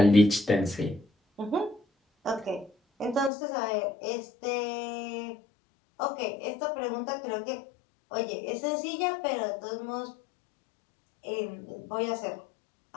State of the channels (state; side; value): drops out; right; at 3.3 s